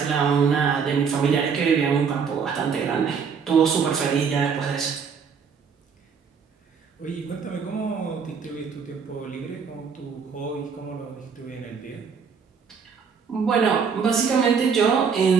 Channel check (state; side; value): quieter; left; 6.1 dB